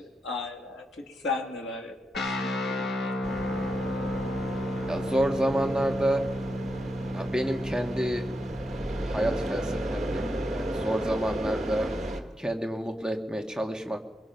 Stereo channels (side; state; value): both; normal; correlation 0.85